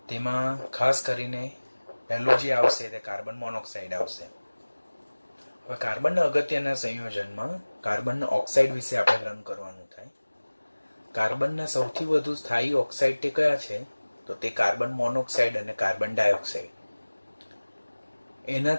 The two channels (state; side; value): inverted; both; correlation -1.00